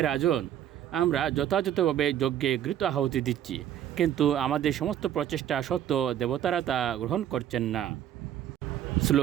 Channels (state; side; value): quieter; left; 10.8 dB